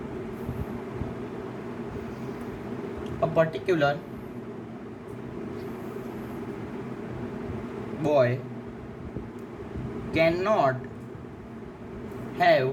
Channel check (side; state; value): both; identical; correlation 1.00